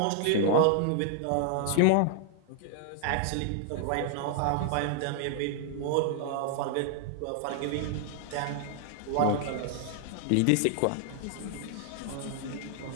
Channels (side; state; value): both; different; correlation 0.00